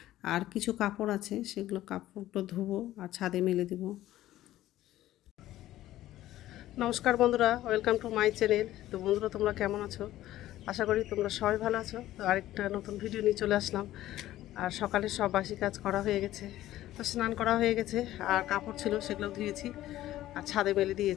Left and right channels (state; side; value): quieter; right; 14.4 dB